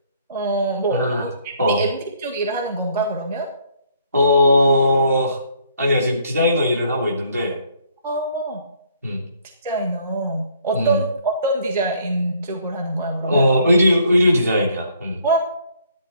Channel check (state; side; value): inverted; both; correlation -0.64